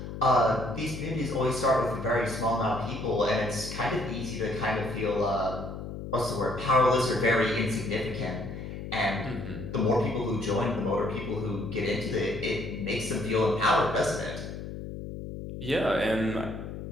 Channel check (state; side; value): noise; left; hum, 8 dB below the sound